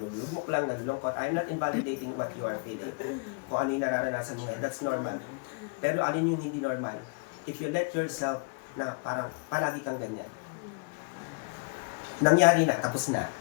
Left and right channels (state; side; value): quieter; right; 33.4 dB